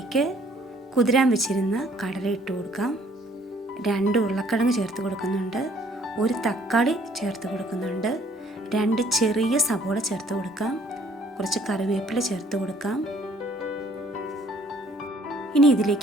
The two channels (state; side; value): normal; both; correlation 0.60